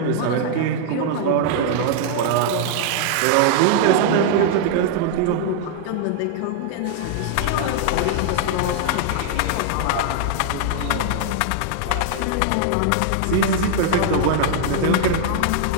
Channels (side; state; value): both; different; correlation -0.01